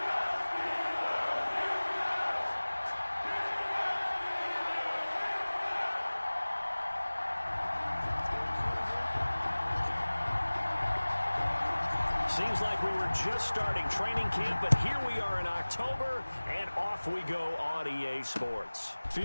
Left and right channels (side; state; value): both; inverted; correlation -1.00